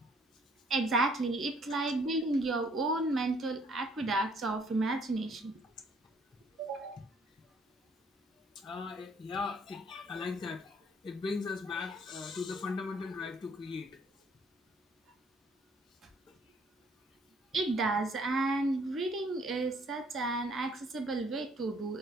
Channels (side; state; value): both; normal; correlation 0.63